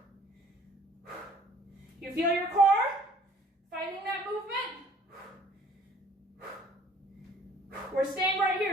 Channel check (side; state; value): both; normal; correlation 0.56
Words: You feel your core fighting that movement? We're staying right